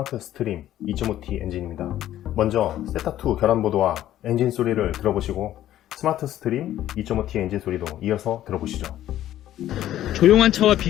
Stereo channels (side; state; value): right; quieter; 12.8 dB